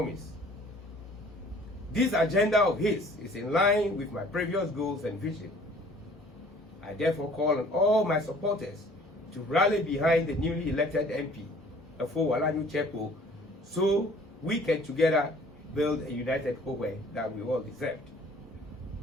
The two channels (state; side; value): normal; both; correlation 0.53